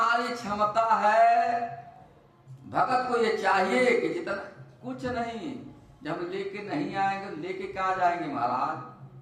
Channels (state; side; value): identical; both; correlation 1.00